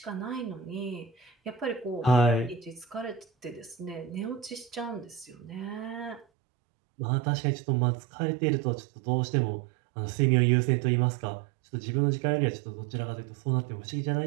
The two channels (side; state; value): left; drops out; at 6.2 s